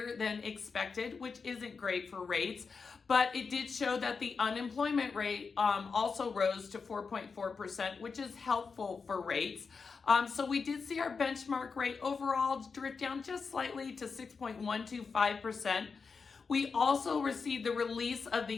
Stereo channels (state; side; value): quieter; right; 5.1 dB